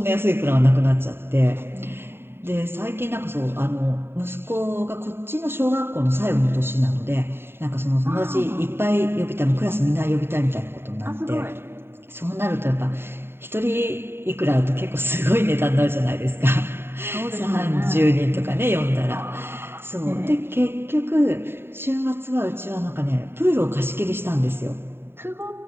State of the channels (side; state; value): left; late; 0.11 ms